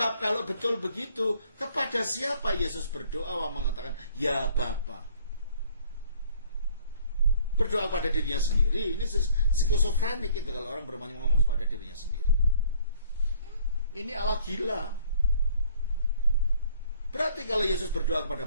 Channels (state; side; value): inverted; both; correlation -0.58